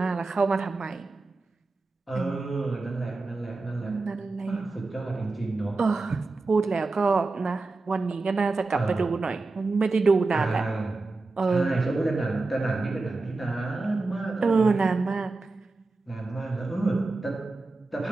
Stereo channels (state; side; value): quieter; left; 3.6 dB